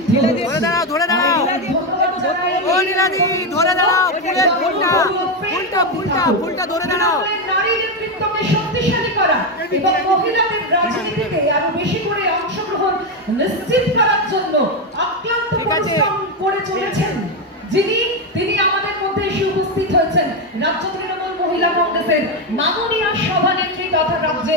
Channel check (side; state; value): both; normal; correlation 0.09